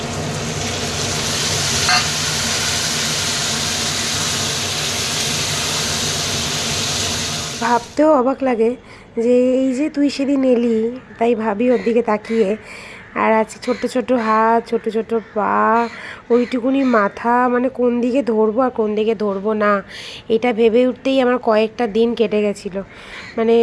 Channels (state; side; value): identical; both; correlation 1.00